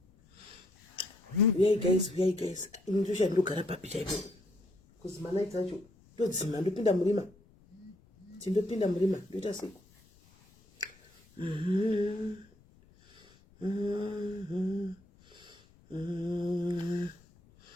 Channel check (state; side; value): noise; left; rumble, 28 dB below the sound